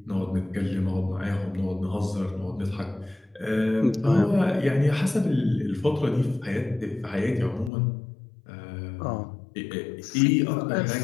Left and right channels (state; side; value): drops out; right; at 7.7 s